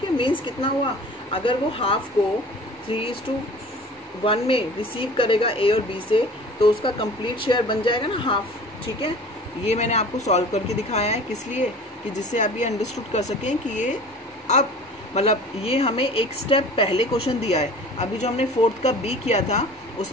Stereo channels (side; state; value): both; normal; correlation 0.43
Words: है। मीन्स कितना हुआ, अगर वो हाफ को 3:1 में रिसीव करेगा ए और बी से, तो उसका कंप्लीट शेयर बन जाएगा ना हाफ, ठीक है। ये मैंने आपको सॉल्व करके दिखाया है, किस लिए, कि जिससे आप ये अंडरस्टूड कर सकें कि ये अब मतलब ये हमें एक स्टेप पहले क्वेश्चन दिया है। अभी जो हमने 4th का बी किया था